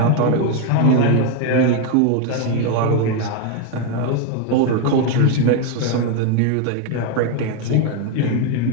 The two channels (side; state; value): both; different; correlation 0.01